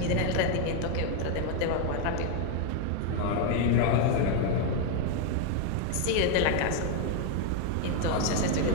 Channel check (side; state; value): both; different; correlation 0.00